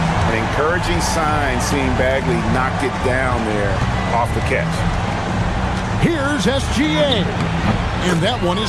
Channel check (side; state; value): both; identical; correlation 1.00